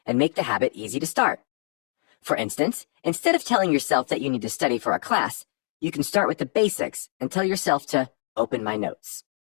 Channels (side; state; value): right; silent; digital silence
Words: and make the habit easy to start. For instance, instead of telling yourself that you need to study for a class, you can start with the basics and tell yourself to open my notes.